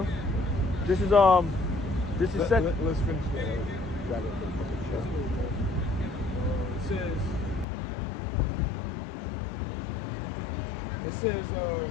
This is Let's finish that.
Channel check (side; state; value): right; drops out; at 7.7 s